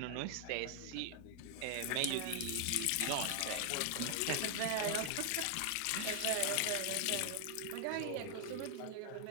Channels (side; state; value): both; different; correlation 0.00